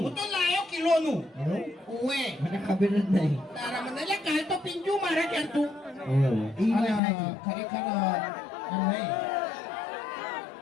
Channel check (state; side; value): drops out; right; at 7.0 s